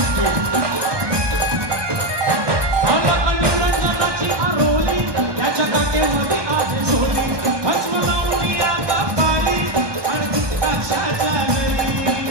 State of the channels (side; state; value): left; late; 1.2 ms